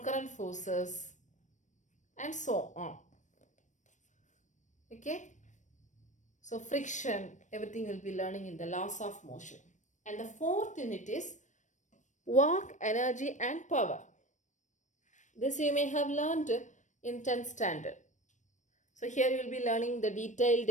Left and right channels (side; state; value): right; late; 0.35 ms